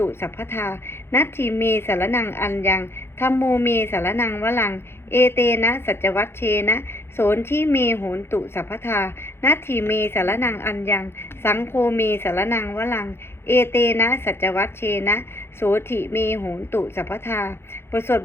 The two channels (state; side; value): late; right; 0.12 ms